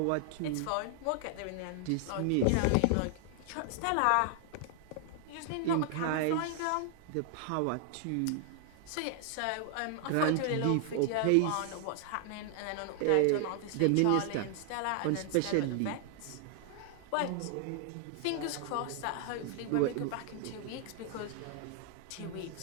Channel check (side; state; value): both; different; correlation 0.00